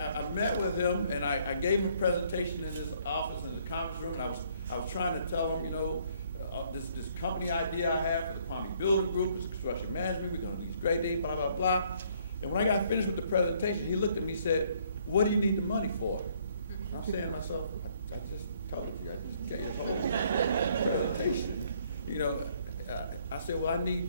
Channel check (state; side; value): inverted; both; correlation -0.65